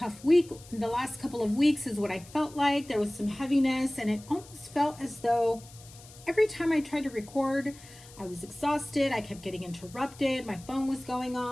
week. The last couple of weeks is what I felt like. There was some heaviness, and it almost felt as though every time I tried to record, I was exhausted. I kept getting interrupted. My phone was going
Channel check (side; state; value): left; noise; hiss, 21 dB below the sound